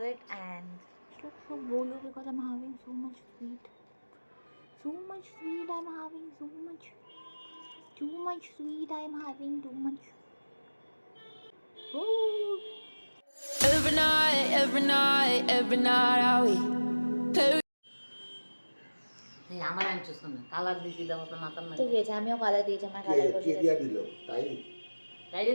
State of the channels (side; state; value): both; inverted; correlation -1.00